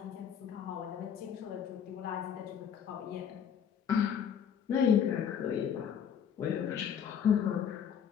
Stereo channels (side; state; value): right; quieter; 8.1 dB